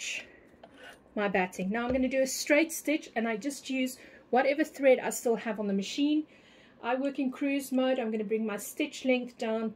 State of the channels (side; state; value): both; identical; correlation 1.00